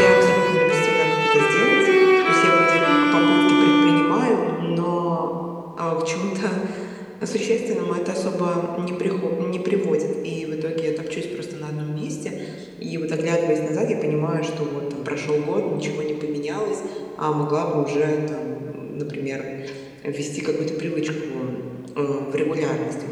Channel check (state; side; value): identical; both; correlation 1.00